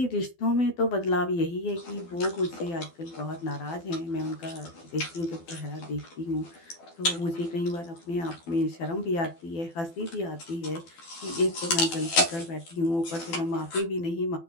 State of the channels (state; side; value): late; right; 12 ms